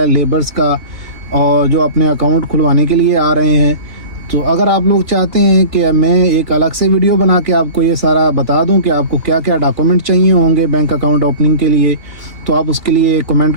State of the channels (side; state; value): left; late; 2.8 ms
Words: لیبرز کا، اور جو اپنے اکاؤنٹ کھلوانے کے لیے آ رہے ہیں۔ تو اگر آپ لوگ چاہتے ہیں کہ میں ایک الگ سے ویڈیو بنا کے آپ کو یہ سارا بتا دوں کہ آپ کو کیا کیا ڈاکومنٹ چاہیے ہوں گے بینک اکاؤنٹ اوپننگ کے لیے، تو آپ اس کے لیے کمنٹ